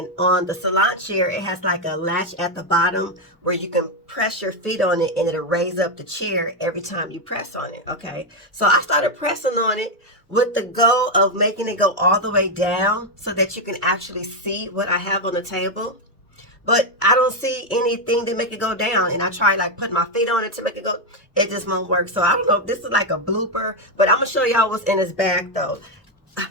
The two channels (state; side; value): normal; both; correlation 0.05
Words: on the salon chair, it has like a latch at the bottom where you can press your feet on it and it'll raise up the chair every time you press on it. Okay, so I started pressing on it with the goal of making it go all the way down so that you can actually see what I have on the table. But I don't see anything to make it go down. And I try like putting my feet on it to make it go. It just won't work. So I don't know if this is like a blooper, but I'm gonna show y'all what's in this bag though.